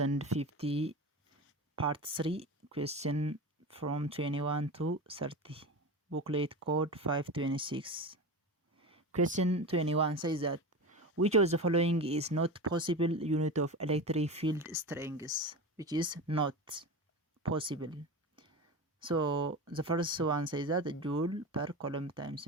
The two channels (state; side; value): normal; both; correlation 0.26